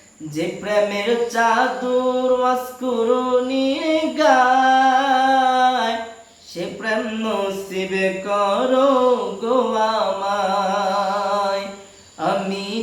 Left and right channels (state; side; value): identical; both; correlation 1.00